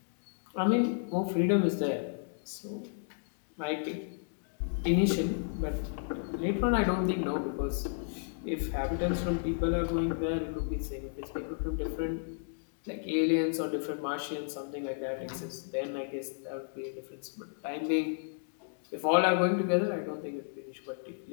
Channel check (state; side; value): silent; right; digital silence